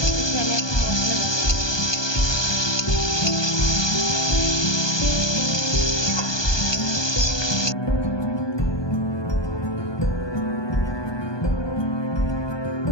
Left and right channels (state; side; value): late; right; 1.2 ms